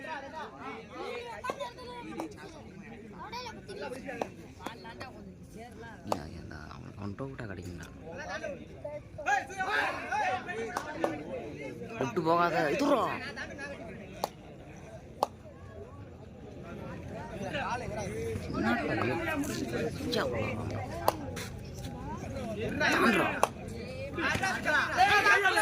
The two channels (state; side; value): identical; both; correlation 1.00